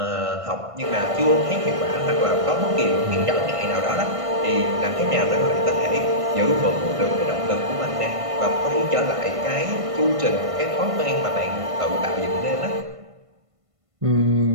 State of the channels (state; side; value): late; left; 1.5 ms